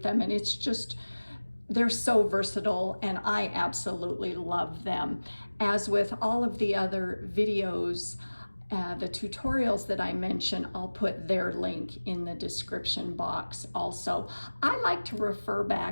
them, and it's just, they're so versatile, and I absolutely love them. As with all of the other videos, the tutorials that I mention, I'll put their link in the description box also. I like to refer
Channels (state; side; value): inverted; both; correlation -1.00